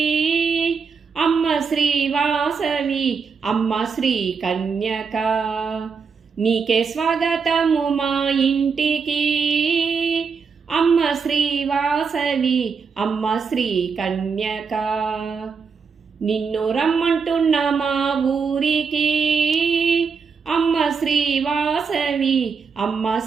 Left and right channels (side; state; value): left; quieter; 5.6 dB